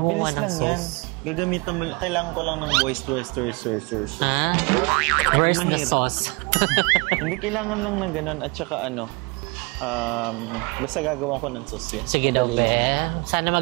ng sauce. Mabilis lang yan. Gagamitan mo. Kailangan ko lang ng voice sauce. Where's the sauce? Hindi kailangan lang ng ganun. At saka basta gagawa ko ng sauce yan. Sige daw, sana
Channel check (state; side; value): quieter; left; 29.1 dB